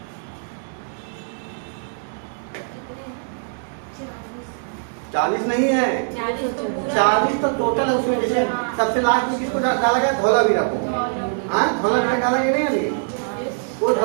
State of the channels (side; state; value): left; silent; digital silence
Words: कितने? 40 नहीं है, 40 तो टोटल है उसमें। जैसे सबसे लास्ट में किसको डाला गया, धौलावीरा को, हाँ धौलावीरा डाला गया नहीं अभी, वो